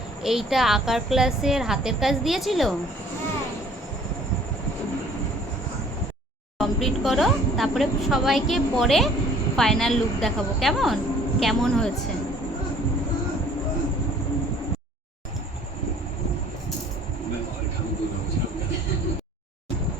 এইটা আঁকার ক্লাসের হাতের কাজ দিয়েছিল? হ্যাঁ। কমপ্লিট করো, তারপরে সবাইকে পরে ফাইনাল লুক দেখাবো। কেমন কেমন হয়েছে?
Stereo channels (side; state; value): both; normal; correlation 0.54